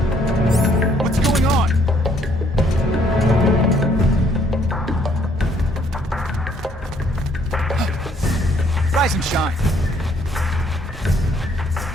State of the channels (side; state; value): both; normal; correlation 0.66